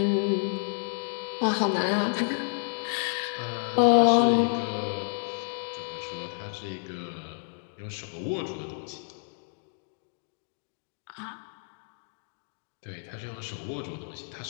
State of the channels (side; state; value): right; silent; digital silence